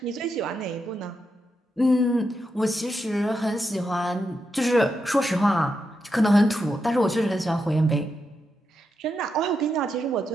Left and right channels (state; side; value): normal; both; correlation 0.85